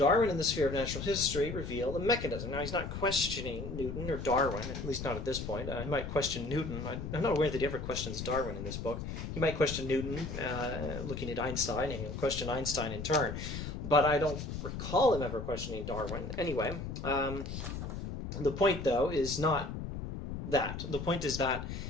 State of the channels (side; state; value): left; noise; rumble, 6 dB below the sound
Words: in the sphere of natural history reveal a mechanism. Now, he's not questioning Newton or Darwin, at least not at this point. He might question Newton. I'm not aware that he ever questions Darwin in this book. He might question Newton, looking at Einstein, and he'll question Einstein in turn. But I don't recall him ever questioning Darwin. Anyway, the point, though, is not that. The point is that